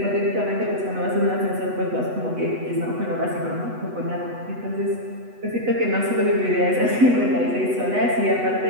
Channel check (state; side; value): late; left; 8.1 ms